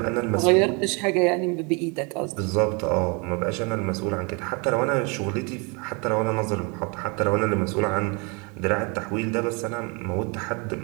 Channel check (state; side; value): quieter; left; 31.5 dB